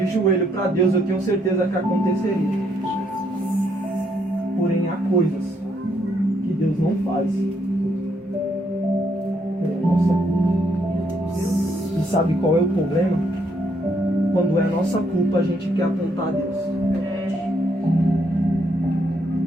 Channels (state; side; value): normal; both; correlation 0.73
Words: joelho para Deus, eu tenho certeza que aconteceria. Porém, há coisas que Deus não faz. Nossa. E sabe qual é o problema? Quando é nossa culpa, a gente quer apontar a Deus.